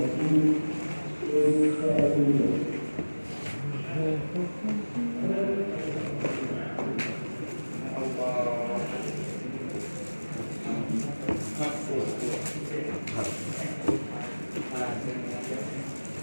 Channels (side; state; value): both; inverted; correlation -1.00